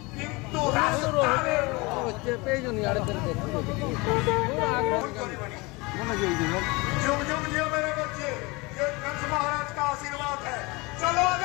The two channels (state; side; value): quieter; right; 25.3 dB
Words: কিন্তু রাস্তায় পেজনি আড়ে ধরে जुग जुग जियो मेरे बच्चे, ये कंस महाराज का आशीर्वाद है। चलो